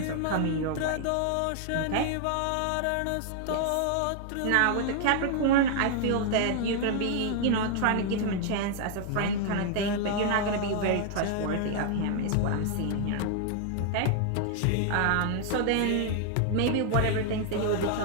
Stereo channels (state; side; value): different; both; correlation 0.00